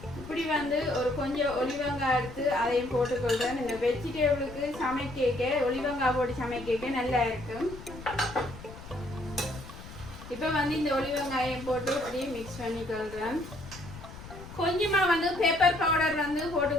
இப்படி வந்து ஒரு கொஞ்சம் ஒலிவங்காய் எடுத்து அதையும் போட்டுக்கொள்றேன். இந்த வெஜிடபிளுக்கு சமைக்க ஒலிவங்காய் போட்டு சமைக்க நல்லா இருக்கும். இப்போ வந்து இந்த ஒலிவங்காயம் போட்டு அப்படியே மிக்ஸ் பண்ணிக்கொள்றேன். கொஞ்சமா வந்து பெப்பர் பவுடர் வந்து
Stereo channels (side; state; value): left; noise; rumble, 15 dB below the sound